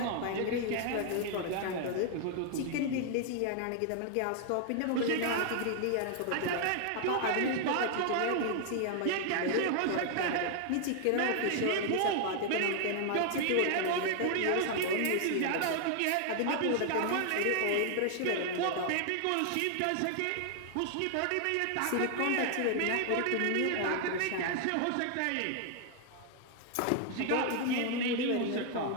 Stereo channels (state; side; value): different; both; correlation 0.00